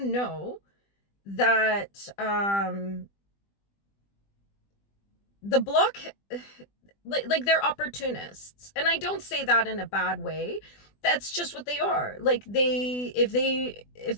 that the Bloc, like they're opportunists, and I don't say that in a bad way. That's just what they are. Like if the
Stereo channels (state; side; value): late; right; 20 ms